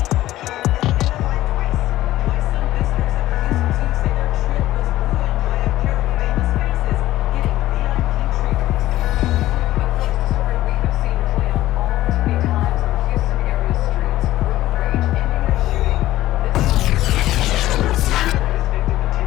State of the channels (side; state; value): right; quieter; 15.3 dB